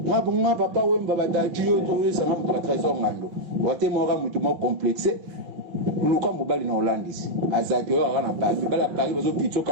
ngabonga papa wemba batati yo to sanga mutu trésor ngano wote mora mutu mo complexe luka mobali na Hollandis azaki yo na Paris bala Paris bazo pitso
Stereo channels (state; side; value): late; left; 6.1 ms